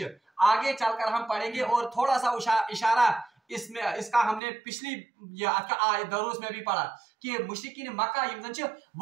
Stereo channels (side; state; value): left; drops out; at 4.4 s